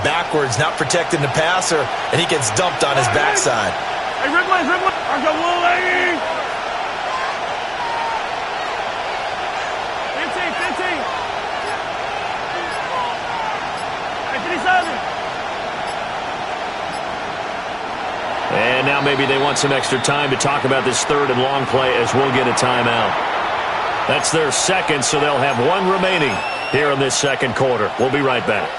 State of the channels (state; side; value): identical; both; correlation 1.00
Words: backwards, not protecting the passer, and he gets dumped on his backside. Hey, Ridley, Ridley. 15. Hey, 57. And now maybe they want some extra time to talk about this 3rd and long play, as we'll get a timeout. That's their second, so they'll have one remaining here in this second quarter. We'll be right back.